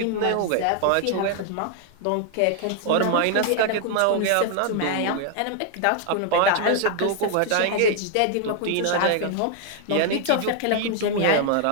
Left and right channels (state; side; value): different; both; correlation 0.00